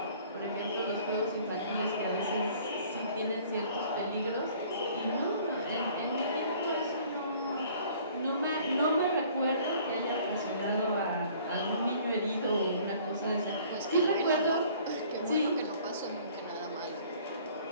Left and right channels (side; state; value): both; inverted; correlation -0.54